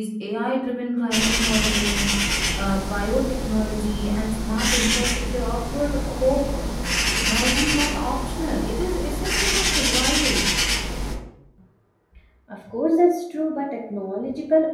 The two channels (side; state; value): both; identical; correlation 1.00